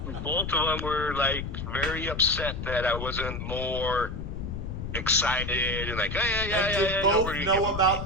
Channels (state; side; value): noise; left; rumble, 6 dB below the sound